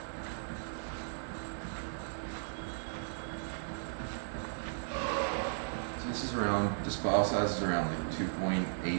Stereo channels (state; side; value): silent; left; 54 dB below the other